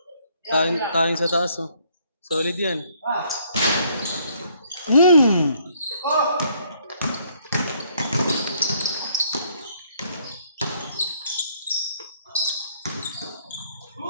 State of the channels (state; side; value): inverted; both; correlation -0.66